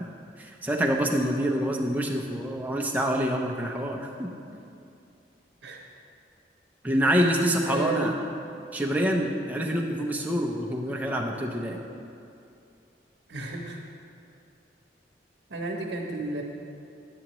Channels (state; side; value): normal; both; correlation 0.68